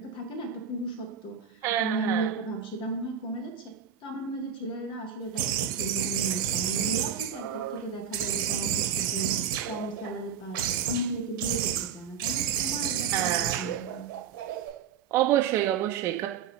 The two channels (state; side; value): quieter; left; 7.6 dB